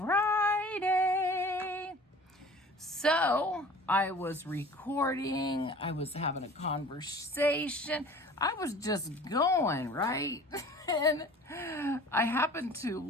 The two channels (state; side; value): normal; both; correlation 0.45